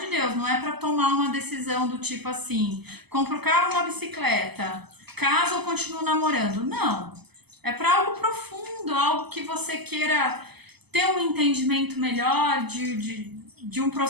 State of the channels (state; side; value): late; left; 0.98 ms